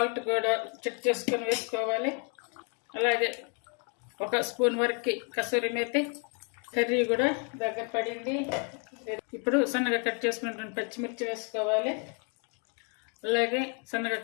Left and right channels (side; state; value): right; quieter; 39.2 dB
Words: కూడా చెక్ చేసుకొని వేసుకోవాలి. అలాగే 1 స్పూన్ వరకు కసూరి మేతి. కర్రీ కూడా దగ్గర పడింది. ఇప్పుడు సన్నగా కట్ చేసుకున్నటువంటి పచ్చిమిర్చి వేసుకోవాలి. అలాగే సన్నగా